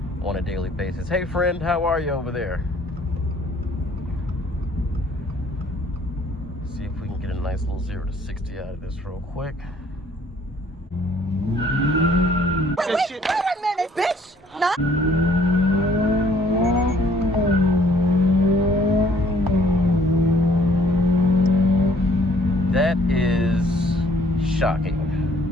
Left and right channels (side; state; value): both; normal; correlation 0.60